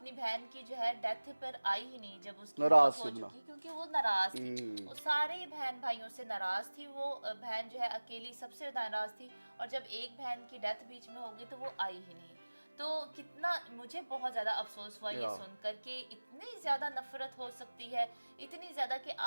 बहन की जो है डेथ पर आई ही नहीं जब उसकी नाराज हो चुकी, क्योंकि वो नाराज थी, वो सारे बहन भाइयों से नाराज थी, वो बहन जो है अकेली सबसे नाराज थी, और जब एक बहन की डेथ बीच में हो गई तो वो आई ही नहीं। तो कितना मुझे बहुत ज़्यादा अफसोस हुआ ये सुनकर कि इतनी ज़्यादा नफरत हो सकती है, इतनी ज़्यादा कि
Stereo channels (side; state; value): both; inverted; correlation -1.00